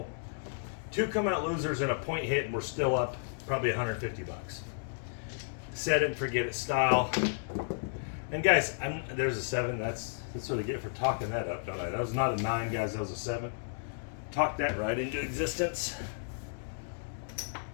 2 come out losers and a point hit, and we're still up probably 150 bucks. Set it and forget it style. And guys, there's a 7. That's what I get for talking that up, don't I? That was not a 9, guys. That was a 7. Talk that right into existence.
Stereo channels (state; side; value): silent; right; digital silence